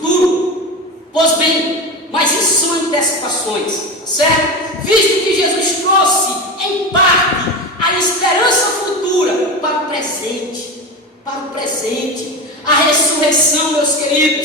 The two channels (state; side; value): normal; both; correlation 0.23